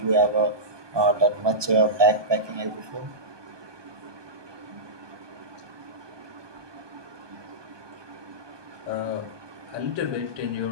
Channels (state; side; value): late; left; 1.2 ms